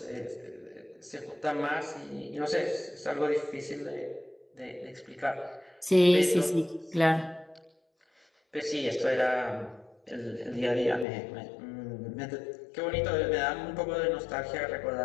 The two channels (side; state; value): right; drops out; at 11.1 s